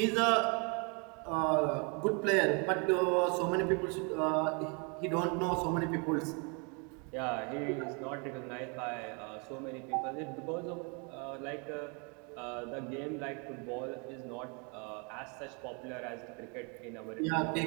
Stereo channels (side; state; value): left; quieter; 34.1 dB